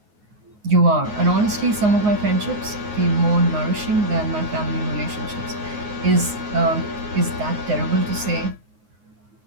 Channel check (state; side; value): late; left; 9.5 ms